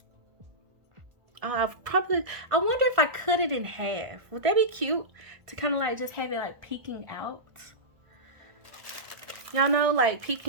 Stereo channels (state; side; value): late; left; 1.4 ms